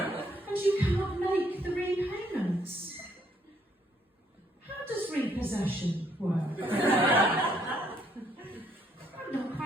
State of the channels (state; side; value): normal; both; correlation 0.69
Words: you cannot make the repayments. How does repossession work? I'm not